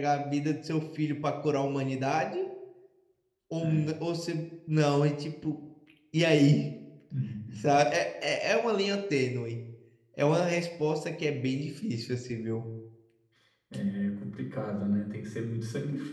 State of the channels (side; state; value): both; identical; correlation 1.00